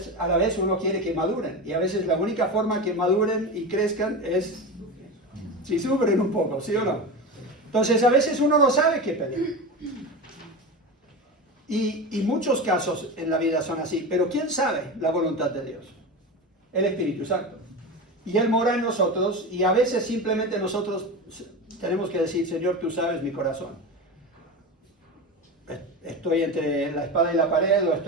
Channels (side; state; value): both; normal; correlation 0.24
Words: vez uno quiere que maduren. Y a veces la única forma que maduren y crezcan es si sufren un poco, ¿sí o no? Entonces a veces uno no sabe qué pedir. Y muchos casos en la vida son así. Pero ¿quién sabe la voluntad de Dios? El Espíritu Santo. Y Él mora en nosotros, y a veces simplemente nosotros tenemos que decir, Señor, tú sabes mi corazón. Estoy entre la espada y la pared, o